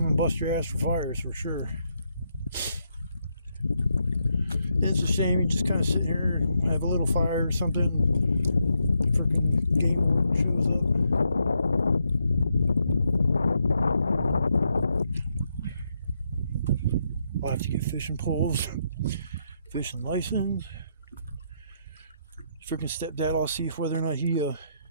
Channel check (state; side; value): inverted; both; correlation -0.78